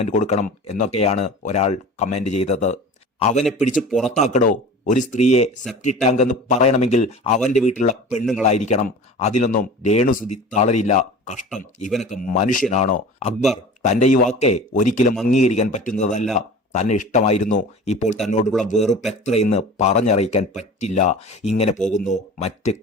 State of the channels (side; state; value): both; normal; correlation 0.38